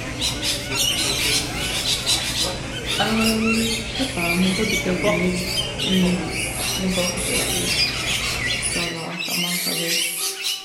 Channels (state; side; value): identical; both; correlation 1.00